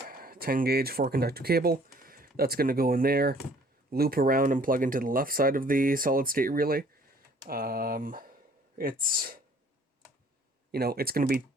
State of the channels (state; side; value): normal; both; correlation 0.57